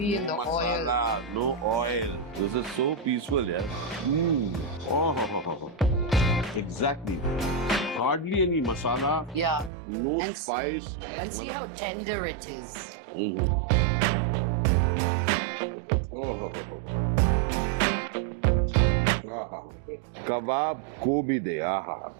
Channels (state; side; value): drops out; left; at 9.7 s